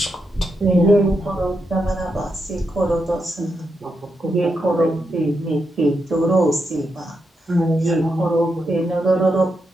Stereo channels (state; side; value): normal; both; correlation 0.84